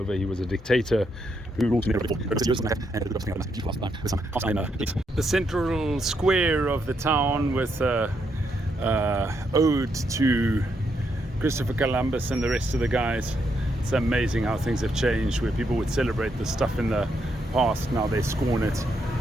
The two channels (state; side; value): normal; both; correlation 0.78